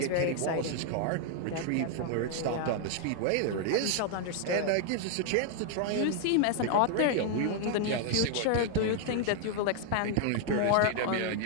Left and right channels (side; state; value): both; different; correlation 0.00